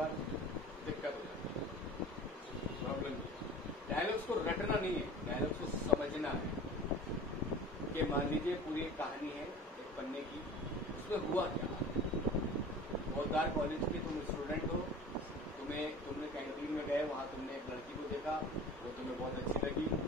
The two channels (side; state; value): both; normal; correlation 0.39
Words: दिक्कत हो जाती है, प्रॉब्लम। डायलॉग्स को रटना नहीं है, डायलॉग्स को समझना है। कि मान लीजिए पूरी एक कहानी है एक पन्ने की, उसमें हुआ क्या। बोधार कॉलेज के तुम स्टूडेंट हो, तुमने कैंटीन में गए, वहां तुमने एक लड़की को देखा, वो तुम्हें बहुत अच्छी लगी,